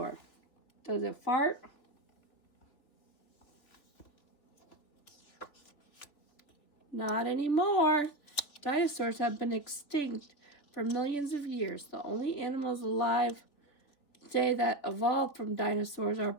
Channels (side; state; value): right; late; 3.4 ms